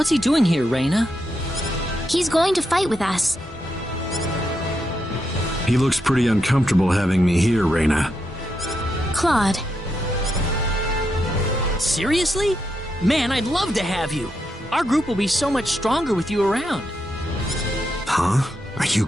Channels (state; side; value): normal; both; correlation 0.83